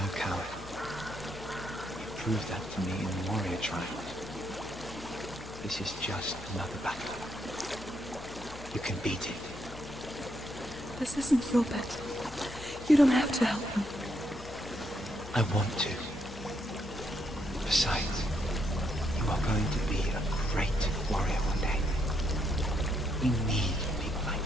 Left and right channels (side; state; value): left; noise; hum, 15 dB below the sound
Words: coward. You proved that to me in the warrior trial. This is just another battle. You can beat it. This isn't your battle. You don't have to help me. I want to. Besides, you are going to be a great warrior one day. We need people like